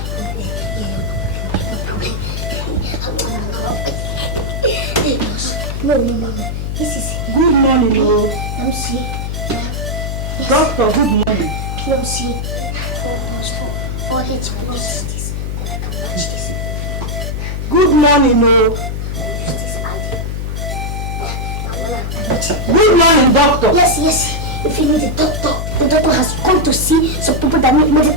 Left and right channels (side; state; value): left; noise; hum, 3 dB below the sound